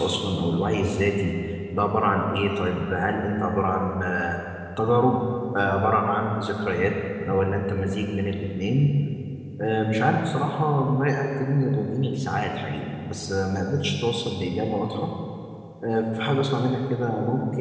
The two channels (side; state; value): both; identical; correlation 1.00